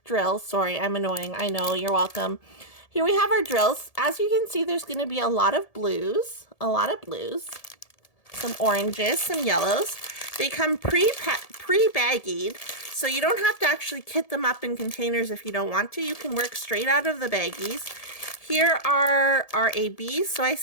drills. Sorry, I'm annoying. I know, you're welcome. Here we have our drills. As you can see, there's going to be a lot of blues, some oranges, some yellows. They come pre-baggied, so you don't have to actually kit them up in containers if you don't want to. You can work straight out of the baggies. Here are our ABs. So I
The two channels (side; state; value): right; late; 1.7 ms